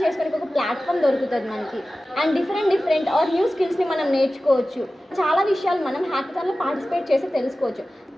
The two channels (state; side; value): normal; both; correlation 0.95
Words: చేసుకోవడానికి ఒక ప్లాట్ఫామ్ దొరుకుతుంది మనకి అండ్ డిఫరెంట్ ఆర్ న్యూ స్కిల్స్ని మనం నేర్చుకోవచ్చు. చాలా విషయాలు మనం హ్యాకథాన్లో పార్టిసిపేట్ చేసి తెలుసుకోవచ్చు.